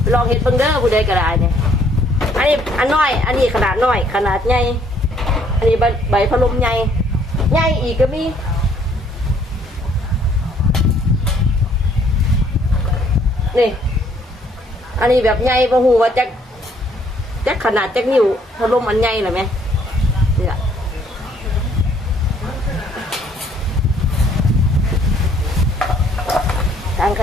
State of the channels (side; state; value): both; normal; correlation 0.64